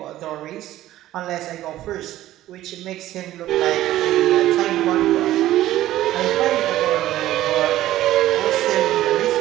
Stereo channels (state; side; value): quieter; left; 14.4 dB